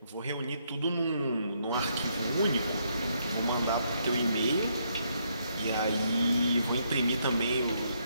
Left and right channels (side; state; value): both; inverted; correlation -0.74